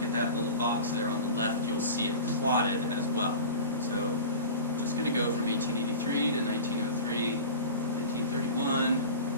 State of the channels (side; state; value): both; inverted; correlation -0.34